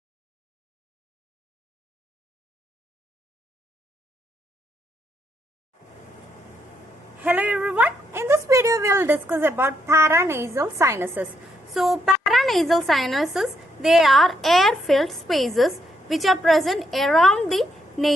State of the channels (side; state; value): both; normal; correlation 0.76